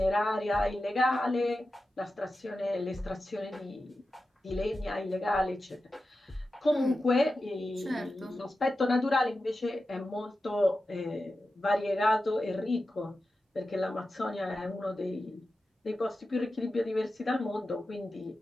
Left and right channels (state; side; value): normal; both; correlation 0.92